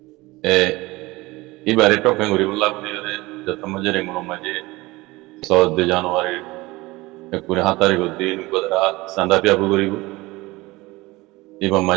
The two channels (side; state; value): left; quieter; 21.1 dB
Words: ibare token guri bulla priore jatam manje rengono manje so de January ekure hatari goddi nukodara sanda pia buguri iba